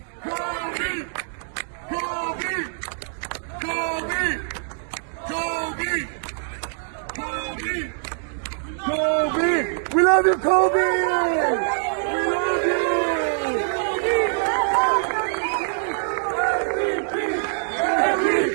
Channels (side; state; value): left; silent; digital silence